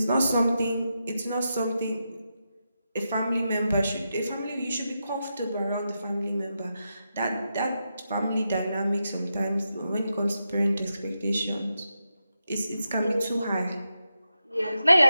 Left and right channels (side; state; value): both; inverted; correlation -0.87